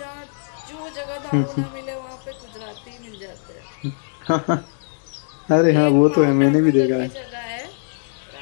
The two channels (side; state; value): right; silent; digital silence